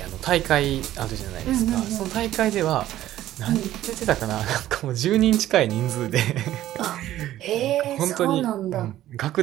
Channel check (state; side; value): quieter; left; 13.6 dB